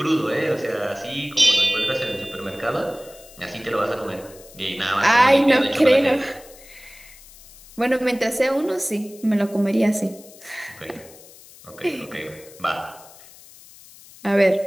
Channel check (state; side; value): noise; left; hiss, 21 dB below the sound